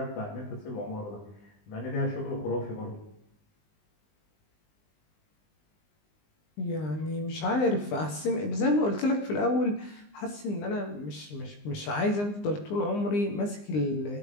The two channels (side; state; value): right; late; 20 ms